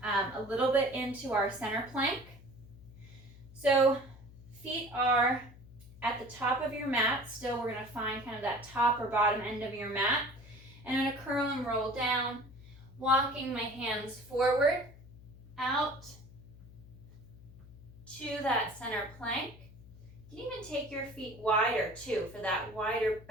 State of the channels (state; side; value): noise; left; hum, 19 dB below the sound